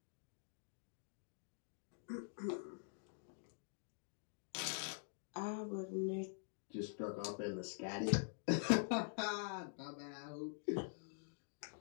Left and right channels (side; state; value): right; silent; digital silence